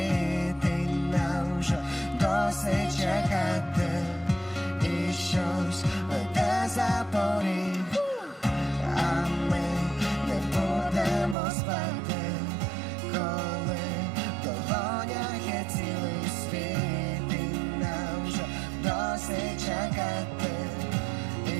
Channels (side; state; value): left; drops out; at 11.4 s